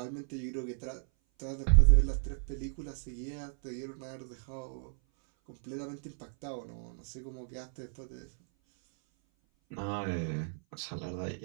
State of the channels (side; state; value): left; silent; 55 dB below the other